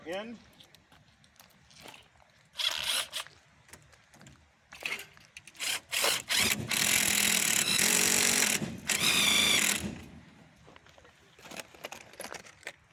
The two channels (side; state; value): both; identical; correlation 1.00